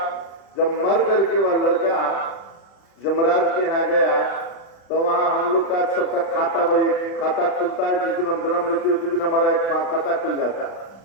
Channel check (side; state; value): right; late; 36 ms